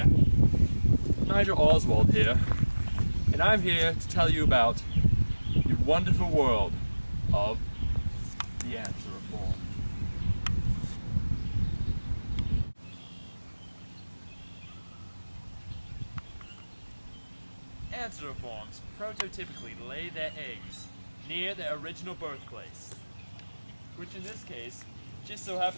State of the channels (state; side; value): inverted; both; correlation -1.00